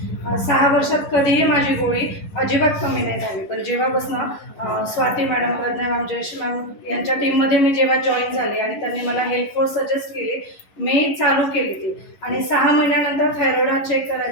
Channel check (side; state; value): right; late; 11 ms